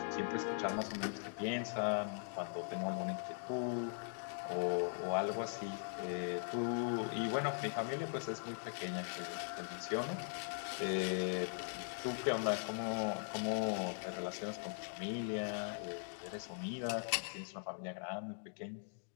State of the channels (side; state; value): right; silent; digital silence